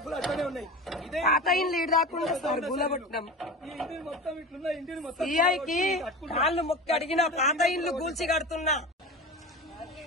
అట్లనే ఉన్నాయి. ఇదే పాత ఇండ్లు ఈడు రాకుండా సార్ గులగొట్టినాం. ఈ ఇంటిని మొత్తం ఇట్లున్నాయి. ఇంటిని మొత్తం సిఐకి కాళ్ళు మొక్కి అడిగిన పాత ఇండ్లు కూల్చి కడుతున్నా.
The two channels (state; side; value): normal; both; correlation 0.30